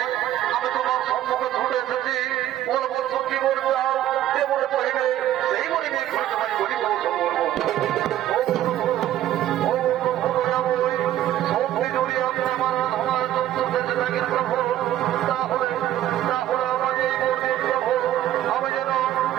আমি তোমার সম্মুখে ছুটে এসেছি। বলে বলছো কি বলবো যে মনে করিবে সেই মনে নিয়ে ঘুরে তোমায় বলি বলছো বলবো শক্তি জড়িয়ে আমি আমার আমার সন্তুষ্ট থাকি প্রভু। তাহলে তাহলে আমার এই বলতে প্রভু আমি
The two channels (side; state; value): left; quieter; 12.8 dB